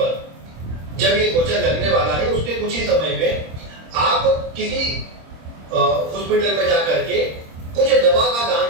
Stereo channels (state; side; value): late; left; 26 ms